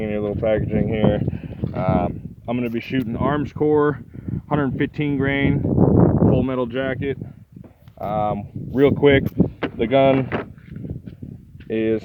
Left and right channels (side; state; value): both; identical; correlation 1.00